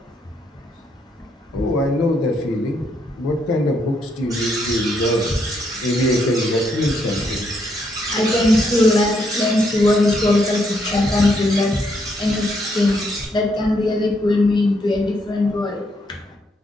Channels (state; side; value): normal; both; correlation 0.75